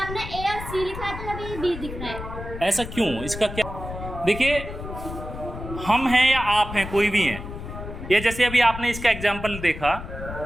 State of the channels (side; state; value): left; noise; rumble, 9 dB below the sound